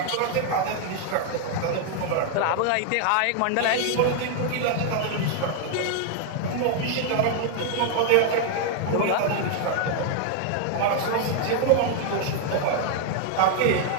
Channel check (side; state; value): both; different; correlation 0.00